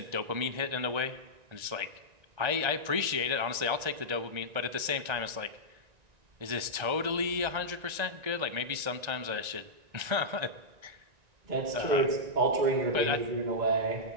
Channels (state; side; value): late; left; 1.9 ms